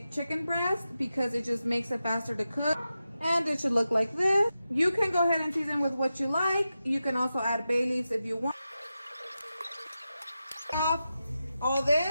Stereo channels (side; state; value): both; inverted; correlation -0.91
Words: chicken breast because it just makes it faster to cook. And it should look like this. You can go ahead and season with what you like. You can also add bay leaves if you want. Off all